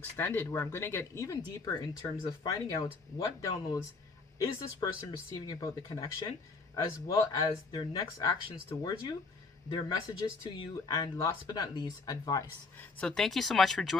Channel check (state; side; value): quieter; right; 4.0 dB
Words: where I'm going to get even deeper in terms of finding out what downloads is this person receiving about the connection, as well as their next actions towards you, their messages to you, and last but not least, advice. So thank you so much for